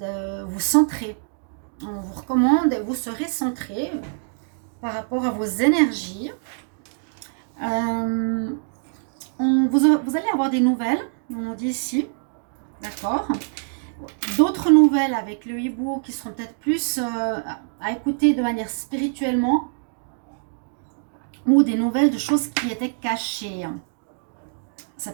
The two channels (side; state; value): left; silent; digital silence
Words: vous centrer. On vous recommande et vous serez centré par rapport à vos énergies. Vous allez avoir des nouvelles, on nous dit ici, d'accord. D'autres nouvelles avec le hibou qui seront peut-être plus à écouter de manière spirituellement, ou des nouvelles de choses qui étaient cachées. Ça